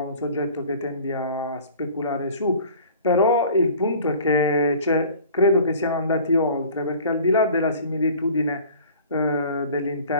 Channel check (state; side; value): inverted; both; correlation -0.46